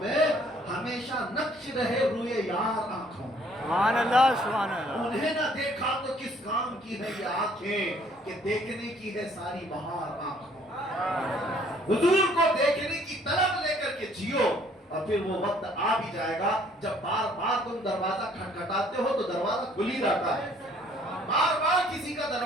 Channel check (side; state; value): both; normal; correlation 0.61